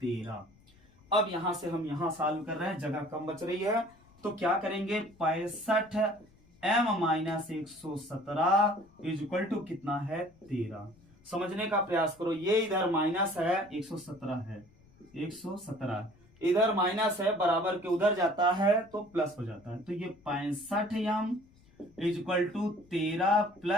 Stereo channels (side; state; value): left; noise; rumble, 29 dB below the sound